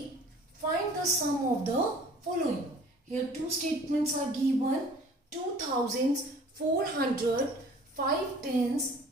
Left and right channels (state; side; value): normal; both; correlation 0.49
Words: find the sum of the following. Here two statements are given. 2 thousands, 400, 5 tens,